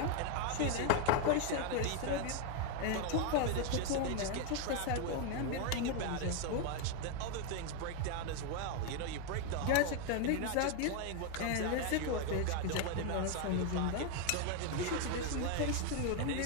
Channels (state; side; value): different; both; correlation 0.01